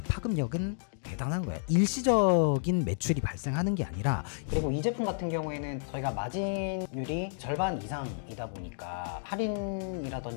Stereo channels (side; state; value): right; silent; digital silence